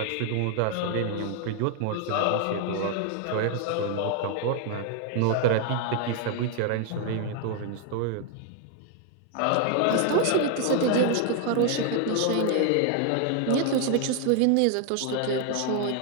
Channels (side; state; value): both; different; correlation 0.00